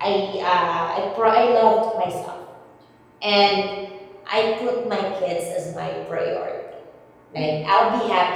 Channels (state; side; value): identical; both; correlation 1.00